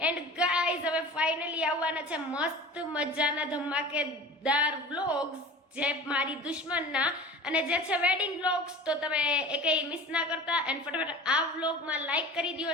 એન્ડ ગાઈઝ હવે ફાઇનલી આવવાના છે મસ્ત મજાના ધમાકેદાર વ્લોગ્સ જે મારી દુશ્મનના અને જે છે વેડિંગ વ્લોગ્સ. તો તમે એકેય મિસ ના કરતા. એન્ડ ફટાફટ આ વ્લોગમાં લાઈક કરી દો,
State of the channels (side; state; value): both; normal; correlation 0.38